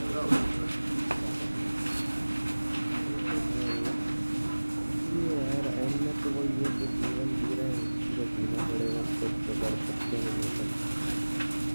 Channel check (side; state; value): both; inverted; correlation -1.00